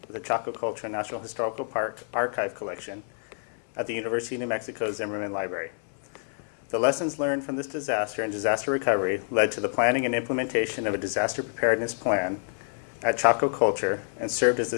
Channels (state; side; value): silent; right; 60 dB below the other